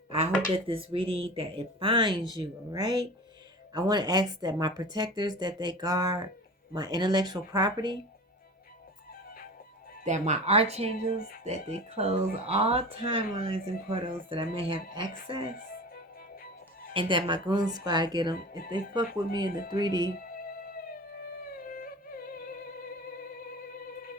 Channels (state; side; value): normal; both; correlation 0.34